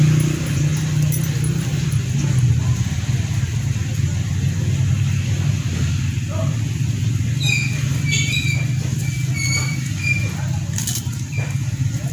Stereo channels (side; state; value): both; identical; correlation 1.00